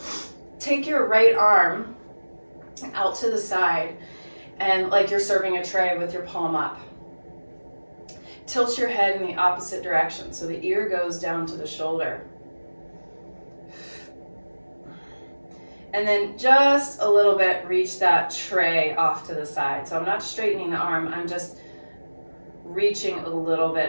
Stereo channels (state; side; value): inverted; both; correlation -1.00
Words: take your right arm out to the side and like you're serving a tray with your palm up. Tilt your head in the opposite direction so the ear goes down to the shoulder. And then just a little bit, reach that tray off to the side. So I'm not straightening the arm, I'm just reaching a little